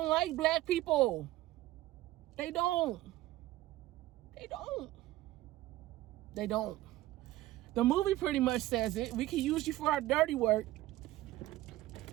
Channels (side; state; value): left; quieter; 15.9 dB